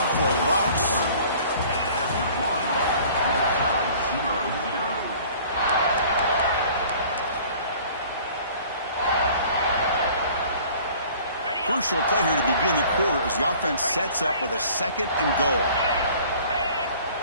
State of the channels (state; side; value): inverted; both; correlation -0.50